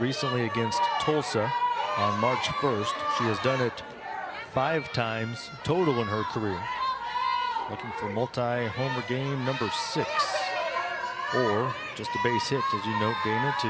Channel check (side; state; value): both; identical; correlation 1.00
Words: recently against Tulsa on March 1st. She has done it 5 times total in her career. Looking for multi-homer game number 6, or just a base hit, as you note, Dana,